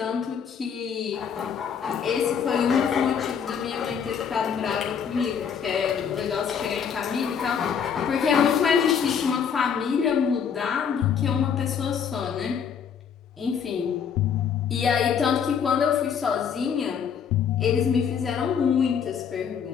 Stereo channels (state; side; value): quieter; right; 7.3 dB